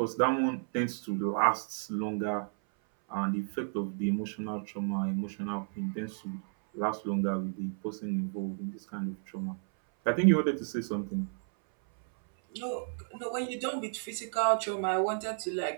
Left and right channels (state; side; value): silent; left; 56 dB below the other